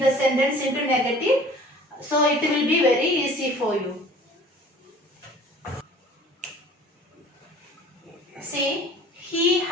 the sentence into negative. So it will be very easy for you. See, he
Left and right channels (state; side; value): normal; both; correlation 0.47